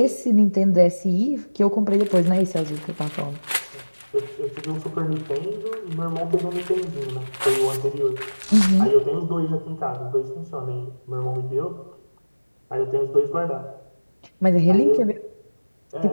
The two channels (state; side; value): inverted; both; correlation -1.00